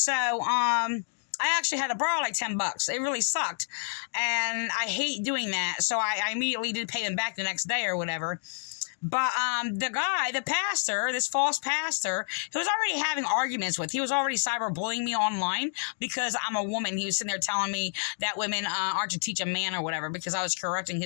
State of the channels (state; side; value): silent; right; digital silence